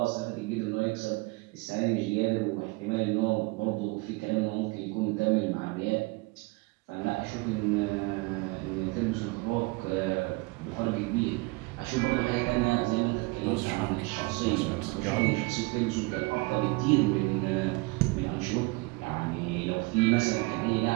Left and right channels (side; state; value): left; quieter; 25.2 dB